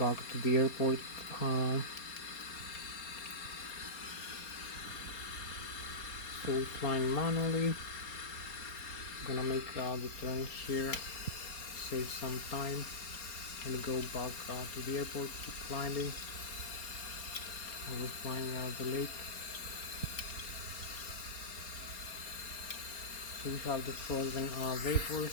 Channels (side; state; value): right; late; 4.3 ms